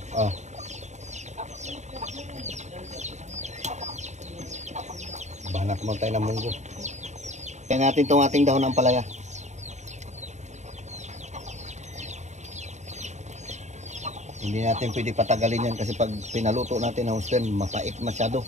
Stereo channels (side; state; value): left; late; 0.34 ms